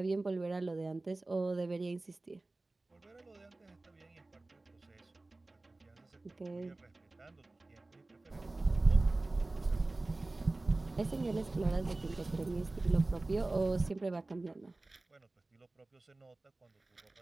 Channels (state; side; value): quieter; left; 3.0 dB